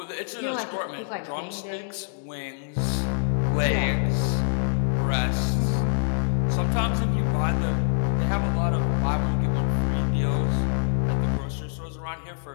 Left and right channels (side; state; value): right; silent; digital silence